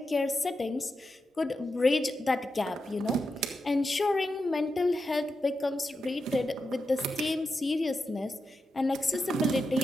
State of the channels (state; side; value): normal; both; correlation 0.88